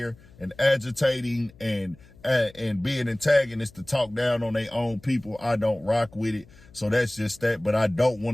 and agitating and being antagonists to talk down on their own people, I don't rock with it. So that's just that. But I don't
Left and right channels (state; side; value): noise; left; hum, 25 dB below the sound